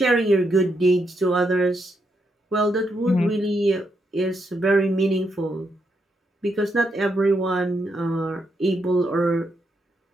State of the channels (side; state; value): both; normal; correlation 0.80